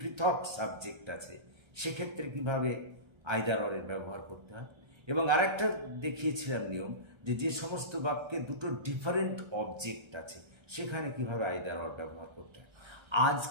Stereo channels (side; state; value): left; late; 1.3 ms